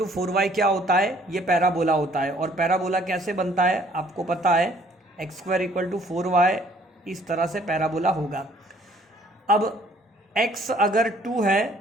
4y क्या होता है, ये पैराबोला होता है। और पैराबोला कैसे बनता है आपको पता है, x² = 4y, इस तरह से पैराबोला होगा। अब x अगर 2 है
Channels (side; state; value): both; normal; correlation 0.60